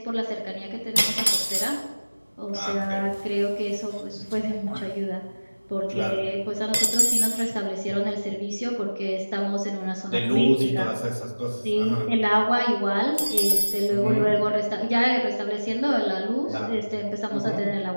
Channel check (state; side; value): inverted; both; correlation -1.00